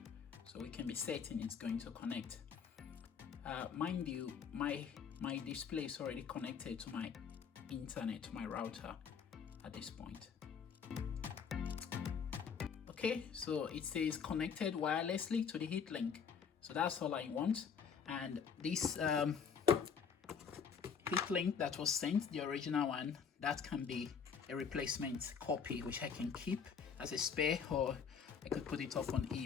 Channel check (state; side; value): quieter; right; 6.7 dB